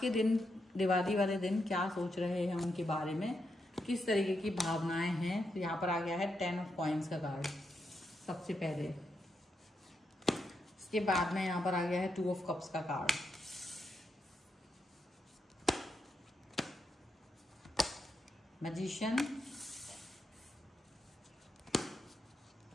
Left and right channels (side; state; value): both; normal; correlation 0.83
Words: के दिन, दिवाली वाले दिन, क्या सोच रहे हैं उनके बारे में, किस तरीके की भावनाएं हैं। तो यहाँ पर आ गया है 10 ऑफ कॉइंस का कार्ड सबसे पहले। इसके बाद में यहाँ पर आ गया है 2 ऑफ कप्स का कार्ड। मैजिशियन,